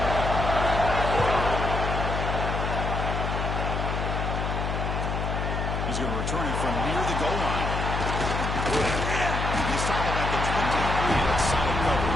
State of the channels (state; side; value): noise; left; hum, 2 dB below the sound